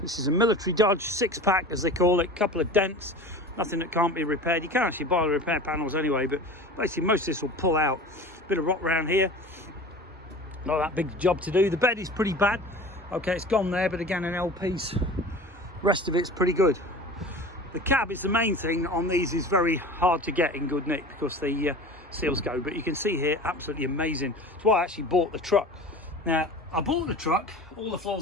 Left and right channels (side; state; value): both; normal; correlation 0.36